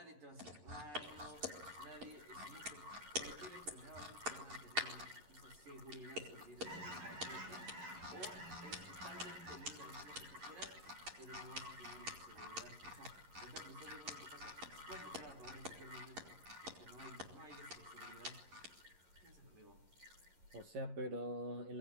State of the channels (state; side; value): late; left; 11 ms